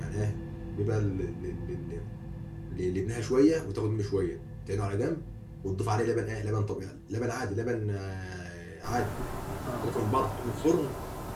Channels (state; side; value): identical; both; correlation 1.00